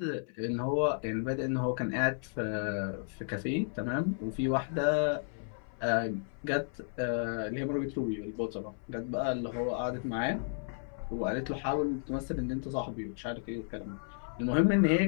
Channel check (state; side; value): silent; right; 56 dB below the other